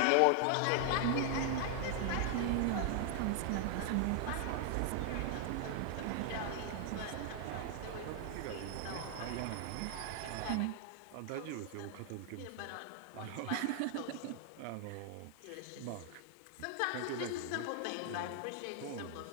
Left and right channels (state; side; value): different; both; correlation 0.00